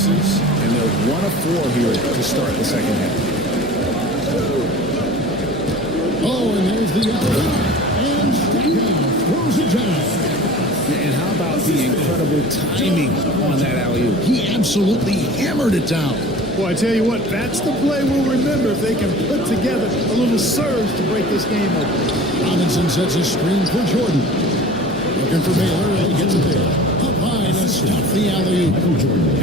And they're 1 of 4 here to start the second half. Oh, and there's the alley. And Stackhouse throws it down. And how about the incredible timing on that alley-oop? He absolutely hammered it down. Well, I tell you what, that's the play we'll remember if they can put together a little surge to break this game open. Robinson sets a screen for Jordan. Looking for Baylor, and he gets it there. Up high to stop the alley-oop.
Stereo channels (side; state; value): left; noise; hum, 20 dB below the sound